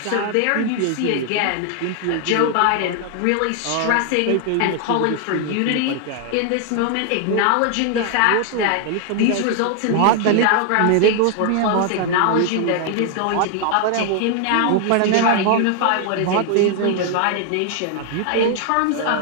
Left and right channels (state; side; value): different; both; correlation 0.00